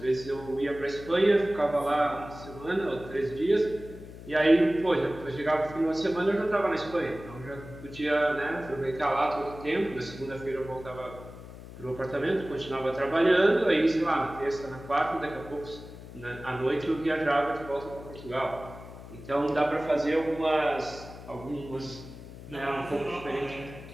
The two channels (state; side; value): noise; left; hum, 15 dB below the sound